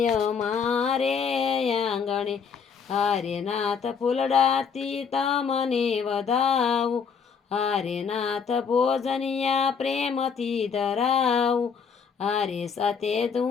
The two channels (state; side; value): quieter; right; 6.3 dB